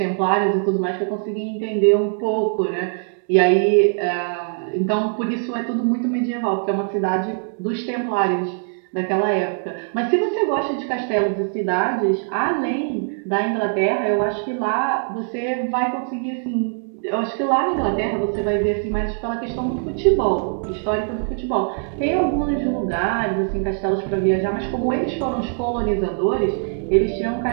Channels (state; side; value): silent; left; 64 dB below the other